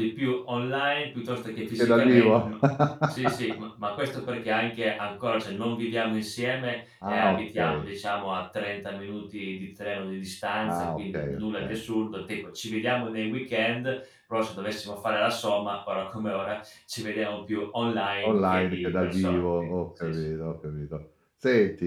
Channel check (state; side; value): identical; both; correlation 1.00